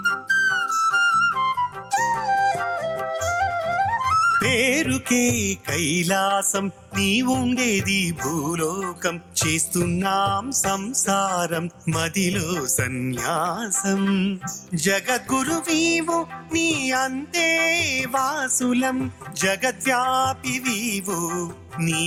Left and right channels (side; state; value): both; identical; correlation 1.00